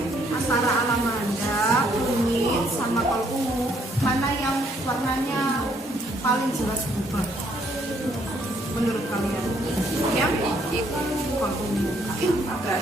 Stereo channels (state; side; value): normal; both; correlation 0.68